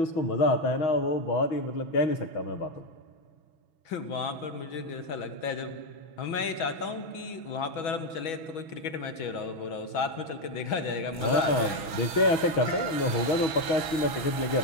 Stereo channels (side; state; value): right; late; 6.2 ms